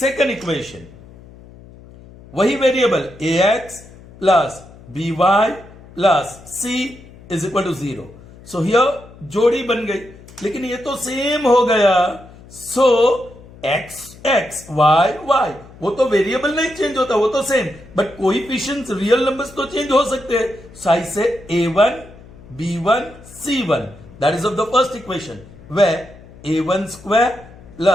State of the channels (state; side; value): noise; left; hum, 21 dB below the sound